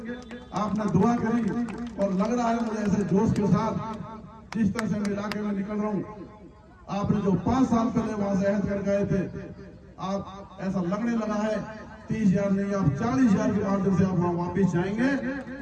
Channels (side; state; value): both; identical; correlation 1.00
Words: आपने दुआ करी और लग रहा है मुझे ऐसे जोश के साथ जिस तरह से मैं इलाके में निकल रहा हूँ, आपने जो 5 साल पहले वहां से अहद कर गए थे, आप ऐसा लगने लगा है 30,000 नहीं, आप 40,000 के माध्यम से आप वहां वापिस जाएंगे